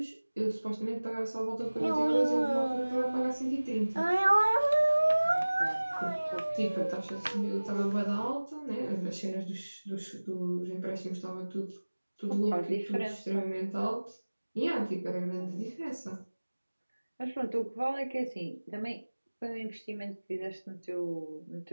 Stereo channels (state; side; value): inverted; both; correlation -1.00